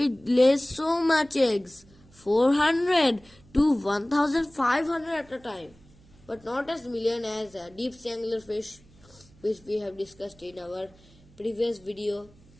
lays so much eggs. 400 to 1500 at a time. But not as million as deep sea anglerfish, which we have discussed in our previous video.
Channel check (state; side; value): noise; right; hum, 27 dB below the sound